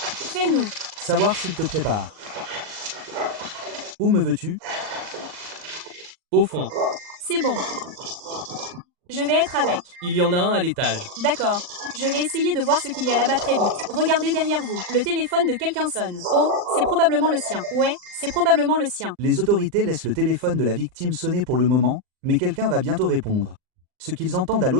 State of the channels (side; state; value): left; late; 39 ms